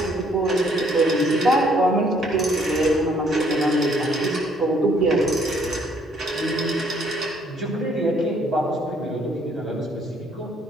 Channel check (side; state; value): both; normal; correlation 0.65